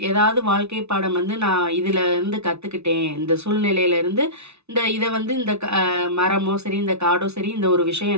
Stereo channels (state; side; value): late; left; 0.80 ms